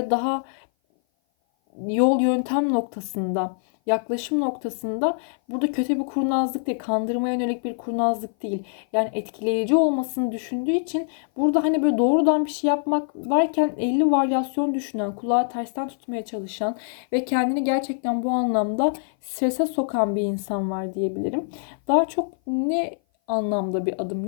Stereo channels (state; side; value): silent; right; 57 dB below the other